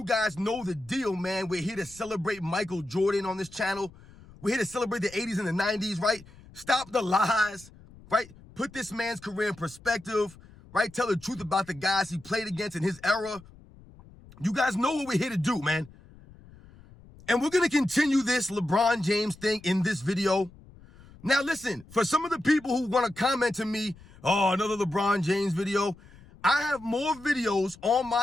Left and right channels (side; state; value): left; noise; rumble, 23 dB below the sound